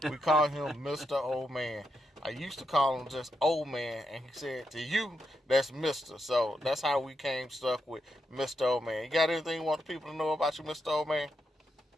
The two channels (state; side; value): normal; both; correlation 0.83